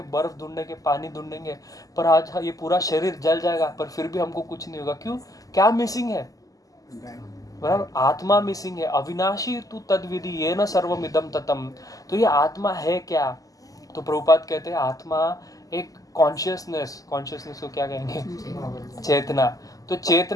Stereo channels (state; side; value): late; right; 0.17 ms